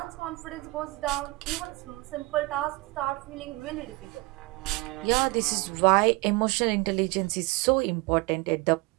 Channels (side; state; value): left; quieter; 23.8 dB